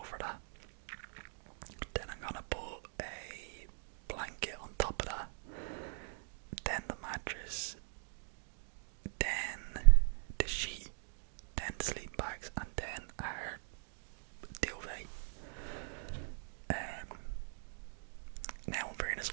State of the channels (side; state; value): left; silent; digital silence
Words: that. Then I'm gonna put a blanket on top of that. Then the mattress. Then the sheet. Then the sleep bags. And then our duvet. Now in fairness,